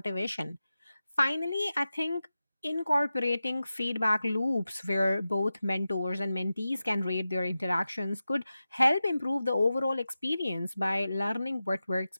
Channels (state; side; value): inverted; both; correlation -0.93